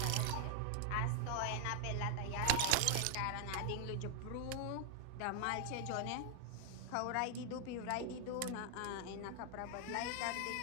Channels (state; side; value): different; both; correlation 0.00